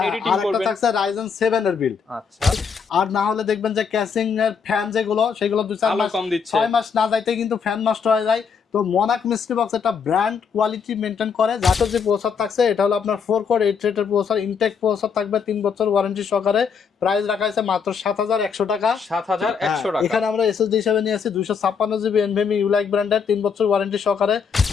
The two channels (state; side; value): quieter; right; 6.2 dB